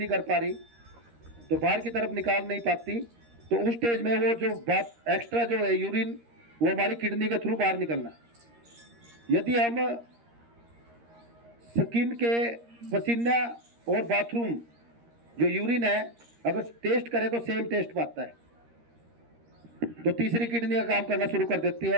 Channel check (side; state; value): left; late; 13 ms